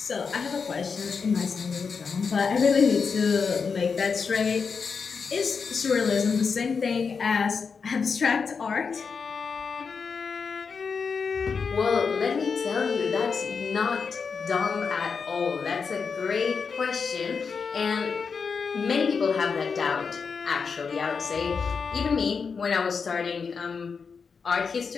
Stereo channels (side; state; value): right; quieter; 5.5 dB